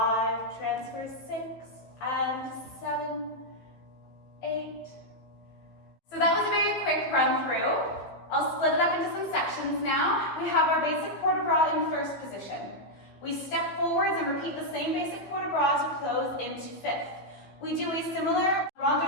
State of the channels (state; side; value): late; right; 15 ms